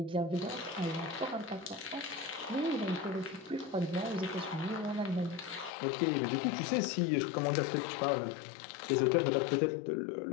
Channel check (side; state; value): right; drops out; at 5.7 s